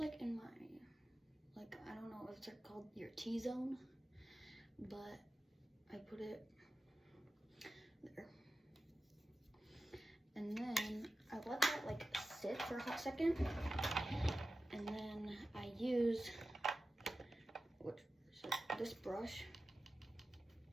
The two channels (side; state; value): both; normal; correlation 0.94